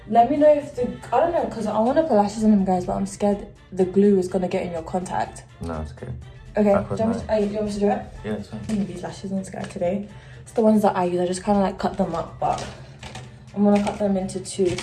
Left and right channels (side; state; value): both; identical; correlation 1.00